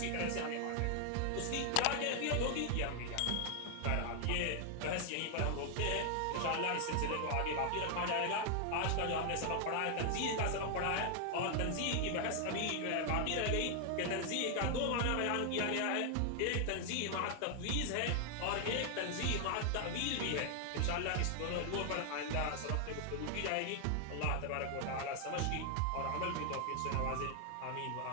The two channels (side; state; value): both; different; correlation 0.00